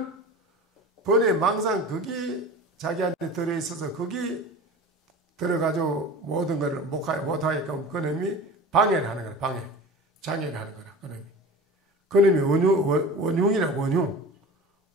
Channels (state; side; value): normal; both; correlation 0.35